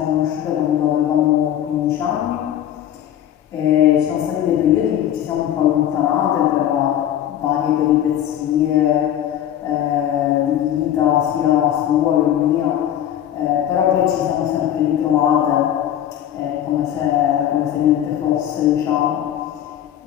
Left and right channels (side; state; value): right; quieter; 11.0 dB